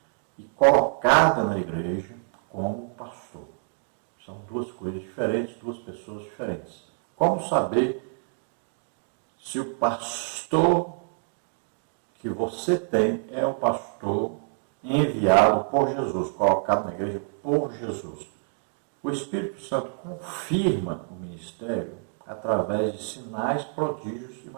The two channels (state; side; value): silent; left; 60 dB below the other